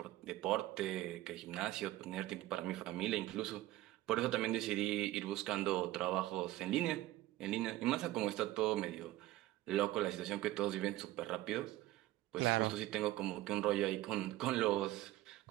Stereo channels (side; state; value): left; quieter; 16.1 dB